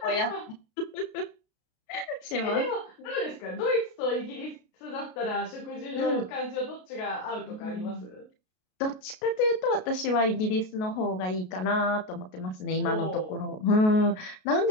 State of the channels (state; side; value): late; right; 33 ms